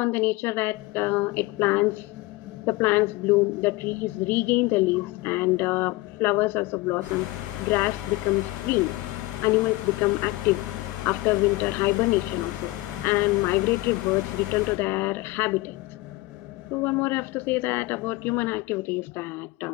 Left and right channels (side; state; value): right; quieter; 20.6 dB